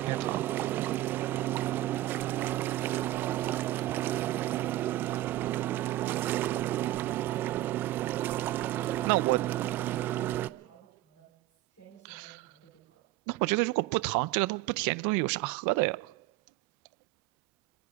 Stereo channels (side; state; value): left; quieter; 16.0 dB